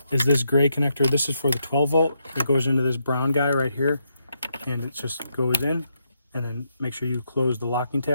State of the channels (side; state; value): both; inverted; correlation -0.79